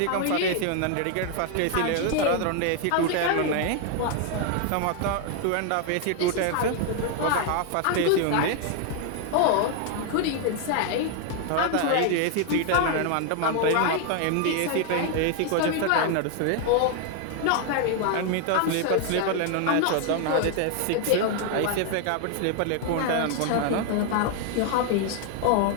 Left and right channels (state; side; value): different; both; correlation 0.00